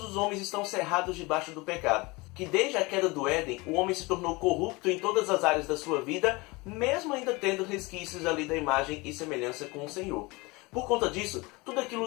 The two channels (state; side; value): quieter; right; 24.5 dB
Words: os homens estão cerrados debaixo do pecado. Que desde a queda do Éden, o homem se tornou corrupto em todas as áreas da sua vida, mesmo ainda tendo resquícios ali da imagem e semelhança com o Senhor. Por conta disso, tudo